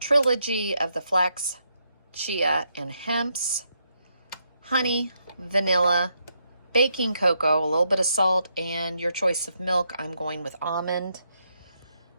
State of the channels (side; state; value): both; inverted; correlation -0.78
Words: of the flax, chia, and hemps, honey, vanilla, baking cocoa, a little bit of salt, and your choice of milk. I'm going with almond.